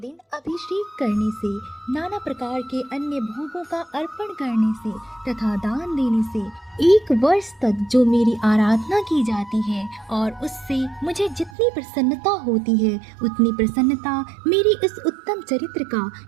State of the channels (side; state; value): left; drops out; at 11.6 s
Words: अभिषेक करने से, नाना प्रकार के अन्य भोगों का अर्पण करने से तथा दान देने से 1 वर्ष तक जो मेरी आराधना की जाती है और उससे मुझे जितनी प्रसन्नता होती है उतनी प्रसन्नता मेरी इस उत्तम चरित्र का